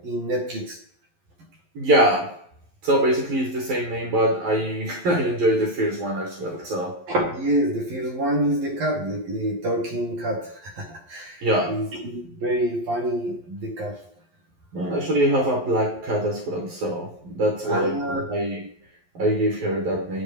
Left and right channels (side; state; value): left; late; 11 ms